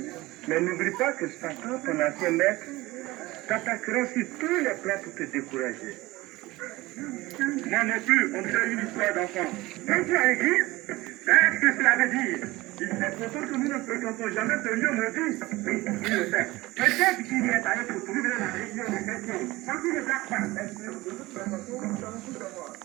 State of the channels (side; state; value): left; quieter; 19.8 dB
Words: Mais n'oublie pas que Satan, ton ancien maître, t'attaquera sur tous les plans pour te décourager. Moi non plus, on dirait une histoire d'enfant. Quand tu as l'église, qu'est-ce que cela veut dire? Il est pourtant que nous ne fréquentons jamais ce lieu maudit. Oui, il le fait. Peut-être qu'il y est allé pour trouver la réunion des chrétiens. Quand il ne blague pas.